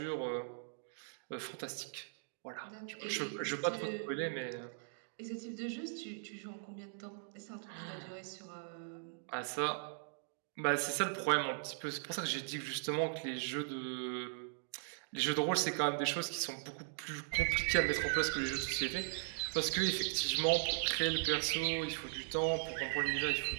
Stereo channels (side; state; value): left; silent; digital silence